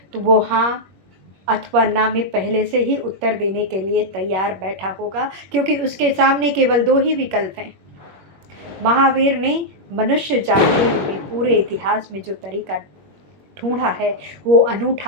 तो वो हाँ अथवा ना में पहले से ही उत्तर देने के लिए तैयार बैठा होगा, क्योंकि उसके सामने केवल 2 ही विकल्प हैं। महावीर ने मनुष्य जाति में पूरे इतिहास में जो तरीका ढूंढा है वो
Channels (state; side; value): late; left; 21 ms